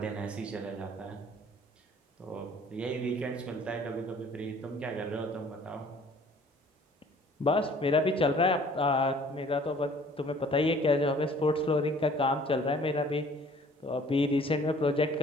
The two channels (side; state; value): both; normal; correlation 0.53